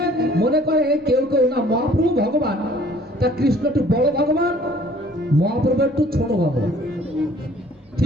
মনে করে কেউ কেউ না মহাপ্রভু ভগবান, তা কৃষ্ণ একটু বড় ভগবান, মহাপ্রভু একটু ছোট ভগবান,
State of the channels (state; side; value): normal; both; correlation 0.55